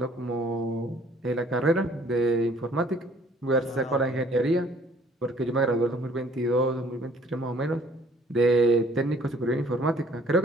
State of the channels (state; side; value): normal; both; correlation 0.58